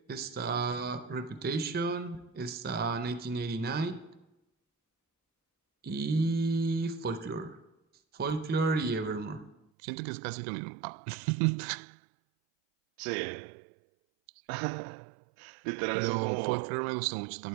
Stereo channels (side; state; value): left; drops out; at 9.6 s